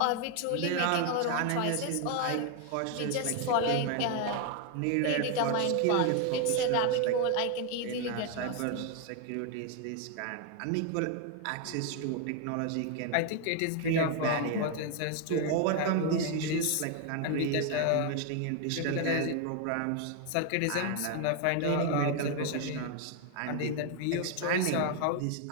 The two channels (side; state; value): both; different; correlation 0.01